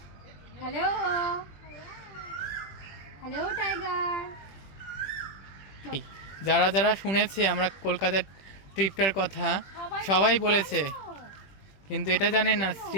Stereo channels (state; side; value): late; right; 21 ms